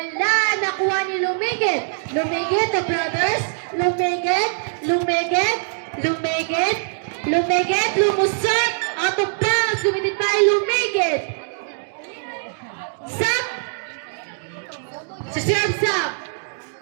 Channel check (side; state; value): left; silent; digital silence